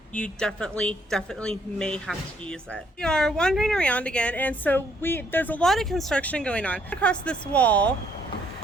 You definitely may have to use it. We are wandering around again, and so there's a lot of construction going on across this wall,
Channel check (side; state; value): both; normal; correlation 0.68